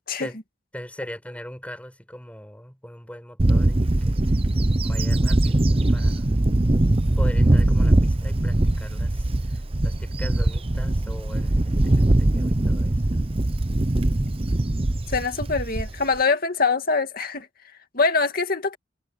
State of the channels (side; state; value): both; normal; correlation 0.78